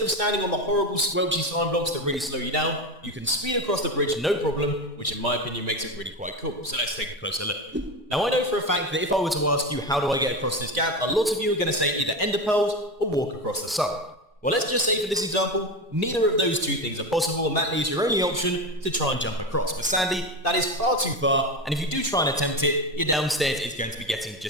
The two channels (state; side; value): normal; both; correlation 0.20